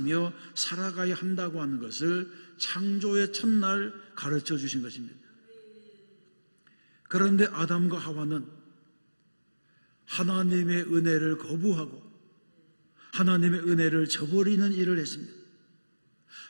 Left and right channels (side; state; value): both; inverted; correlation -1.00